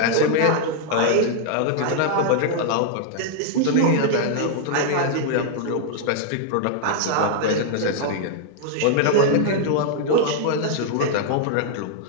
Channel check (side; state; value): both; different; correlation 0.00